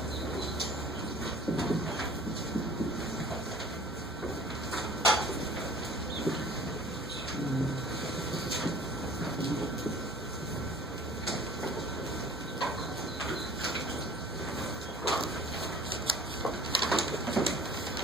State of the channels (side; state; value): both; normal; correlation 0.48